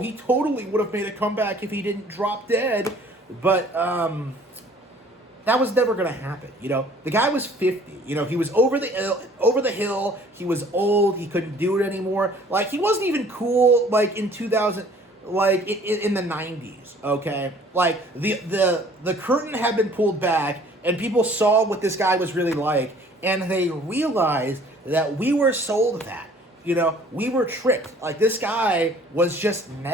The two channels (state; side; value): normal; both; correlation 0.54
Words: totally would have made a comeback if he didn't drop dead, but that was never going to happen. The guy was 50. He was over the hill. He was old. He couldn't do it anymore. He wasn't even cool in 2000, in the 90s. Okay, the curtain had been pulled back, and people saw what this guy was really like, and they realized that we were sold that. We were tricked. This guy was just